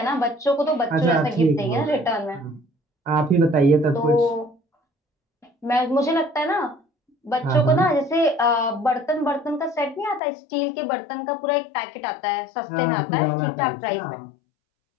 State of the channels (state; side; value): drops out; right; at 10.2 s